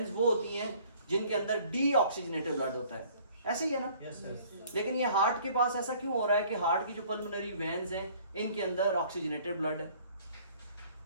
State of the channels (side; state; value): both; inverted; correlation -0.55